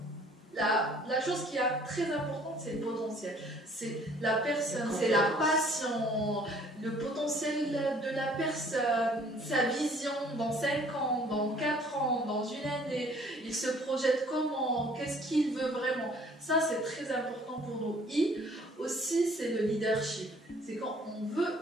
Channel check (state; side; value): normal; both; correlation 0.57